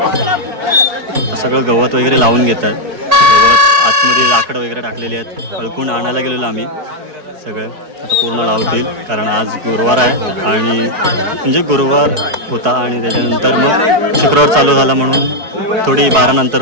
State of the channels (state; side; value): late; left; 4.6 ms